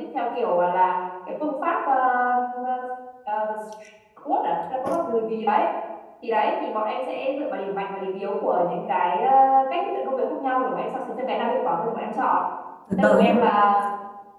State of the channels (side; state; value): both; identical; correlation 1.00